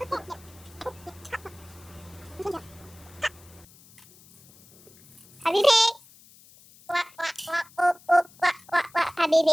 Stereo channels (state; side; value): noise; left; hiss, 25 dB below the sound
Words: Happy pig. Quack, quack, quack, quack, quack, quack, quack, quack, happy